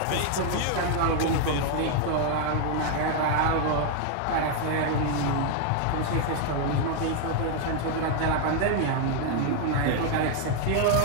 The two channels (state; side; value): different; both; correlation 0.00